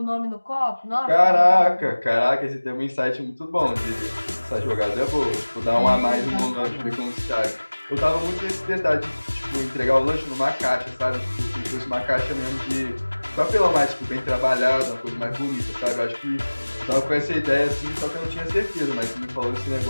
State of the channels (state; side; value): inverted; both; correlation -1.00